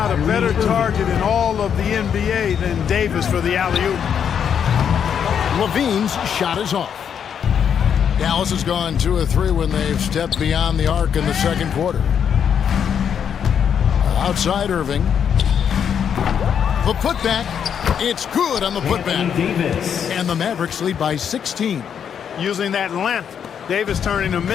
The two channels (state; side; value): quieter; right; 8.0 dB